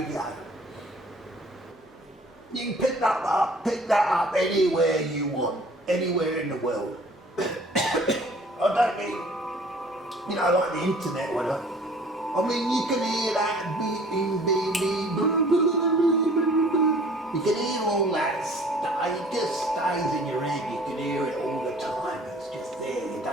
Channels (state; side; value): normal; both; correlation 0.52